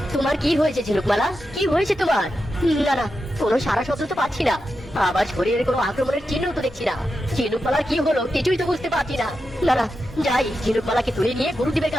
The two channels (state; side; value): normal; both; correlation 0.89